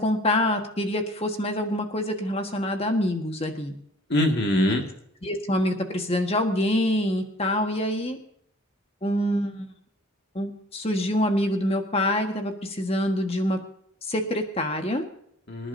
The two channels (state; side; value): normal; both; correlation 0.52